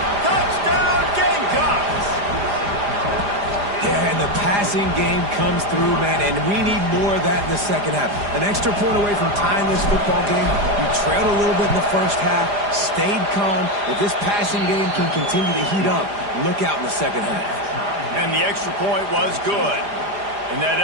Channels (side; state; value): left; late; 4.9 ms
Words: Touchdown, Gamecocks! Yeah, and the passing game comes through, man, and we need more of that in the 2nd half. An extra point away from tying this football game. We trailed a little bit in the 1st half, stayed calm. If this passing game can continue to heat up, look out in the 2nd half. And the extra point was good. And that